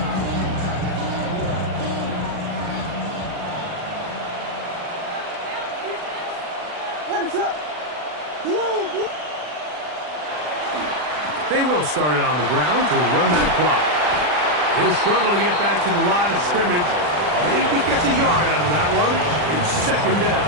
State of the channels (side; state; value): left; late; 40 ms